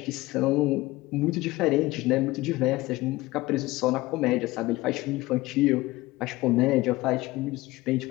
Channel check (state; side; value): quieter; right; 19.7 dB